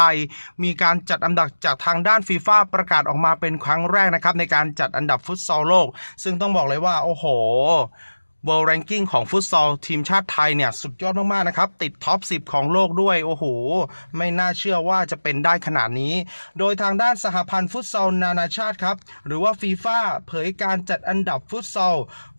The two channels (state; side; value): inverted; both; correlation -1.00